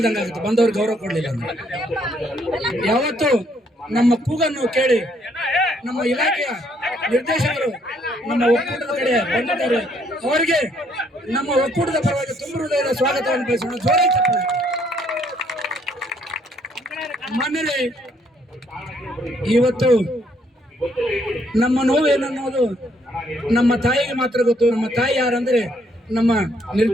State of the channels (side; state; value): both; normal; correlation 0.68